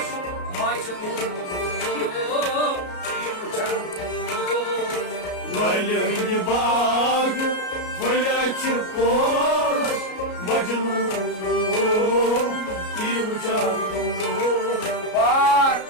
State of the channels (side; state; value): right; late; 33 ms